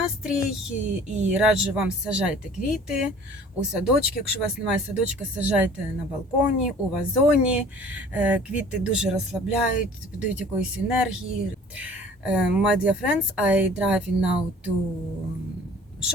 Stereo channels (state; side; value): normal; both; correlation 0.49